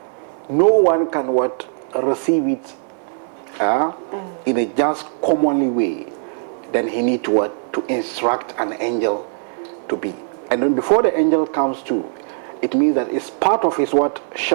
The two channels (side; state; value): left; silent; 59 dB below the other